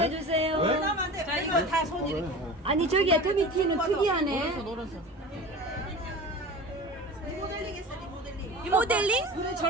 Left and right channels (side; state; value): both; normal; correlation 0.35